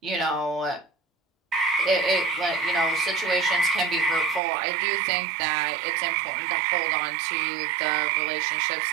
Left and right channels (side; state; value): left; drops out; at 4.4 s